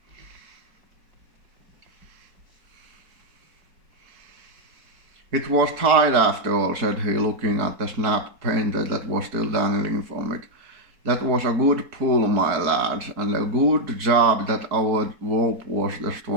It was tied after all, said he, looking at the snapped painter that was still dangling from it. That was a good pull, my lads, and a good job that our rope was the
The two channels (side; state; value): left; late; 4.6 ms